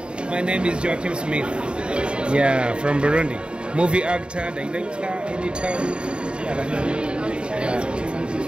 My name is Joachim Smith. Yeah, from Burundi. Movie actor, director, editor. Yeah.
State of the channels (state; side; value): late; left; 0.052 ms